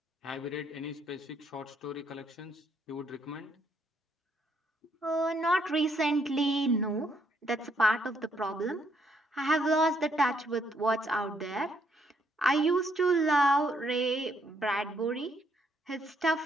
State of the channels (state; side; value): normal; both; correlation 0.71